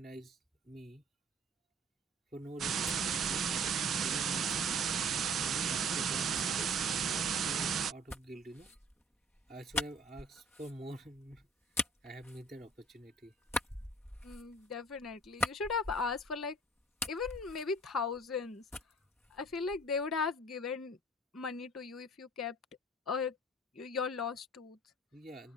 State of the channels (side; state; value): both; normal; correlation 0.51